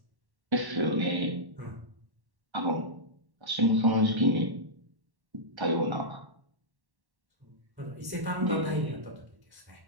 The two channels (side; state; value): left; late; 1.1 ms